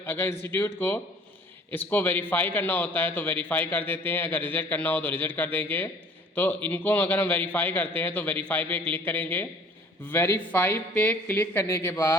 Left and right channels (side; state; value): both; normal; correlation 0.52